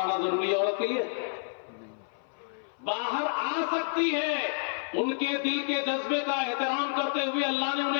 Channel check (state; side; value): silent; right; 56 dB below the other